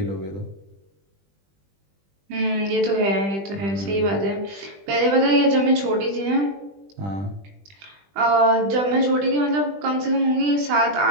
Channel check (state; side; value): late; left; 20 ms